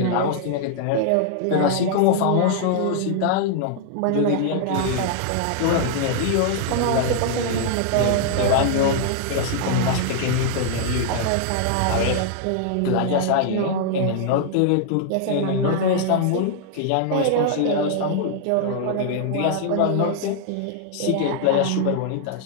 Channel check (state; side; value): different; both; correlation 0.00